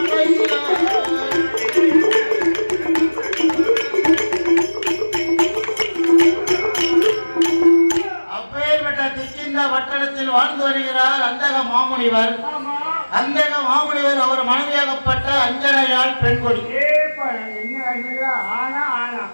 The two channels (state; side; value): inverted; both; correlation -1.00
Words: அப்பேற்பட்ட திக்கிந்த வட்டணத்தில் வாழ்ந்து வருகிறார் அந்தக மாமுனிவர். அந்தக மாமுனிவர் அவர் மனைவியாகப்பட்ட அஞ்சனையால் பெண்கொடி.